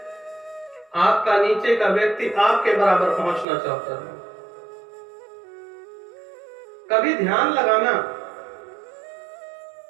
आपका नीचे का व्यक्ति आपके बराबर पहुंचना चाहता है। कभी ध्यान लगाना,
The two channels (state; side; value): drops out; left; at 3.5 s